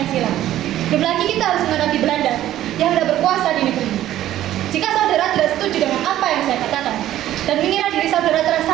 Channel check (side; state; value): left; quieter; 13.1 dB